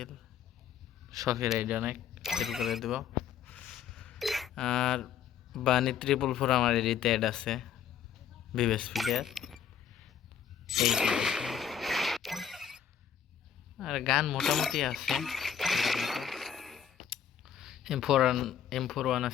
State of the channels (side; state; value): right; quieter; 8.5 dB